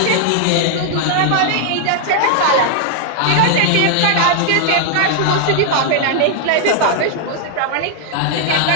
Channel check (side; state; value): both; different; correlation 0.00